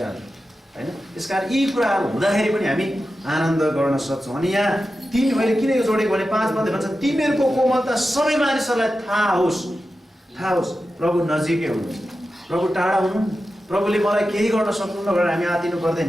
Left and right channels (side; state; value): both; normal; correlation 0.92